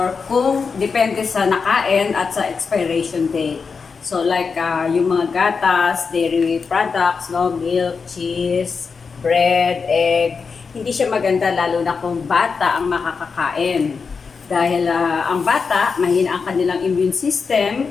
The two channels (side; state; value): right; quieter; 5.2 dB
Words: kung depende sa nakain at sa expiration date. So like yung mga gatas, dairy products, no, milk, cheese, bread, egg, hindi siya maganda lalo na kung bata ang makakakain. Dahil ang bata, mahina ang kanilang immune system